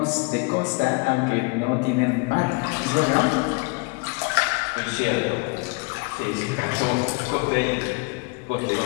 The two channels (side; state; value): right; quieter; 29.6 dB